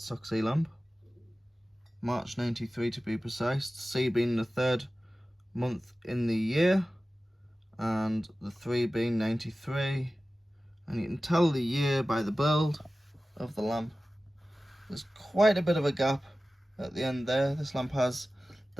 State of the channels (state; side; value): normal; both; correlation 0.96